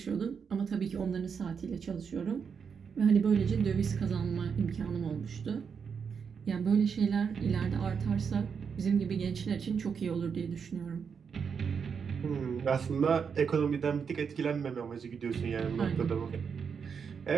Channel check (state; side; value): quieter; left; 6.4 dB